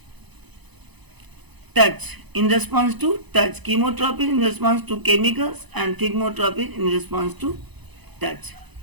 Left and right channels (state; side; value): late; left; 0.99 ms